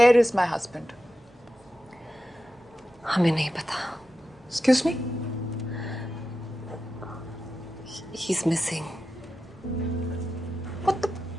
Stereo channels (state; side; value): normal; both; correlation 0.91